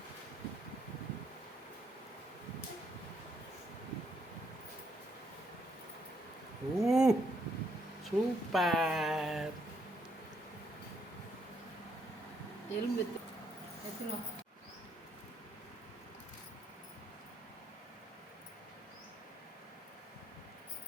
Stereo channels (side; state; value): both; normal; correlation 0.73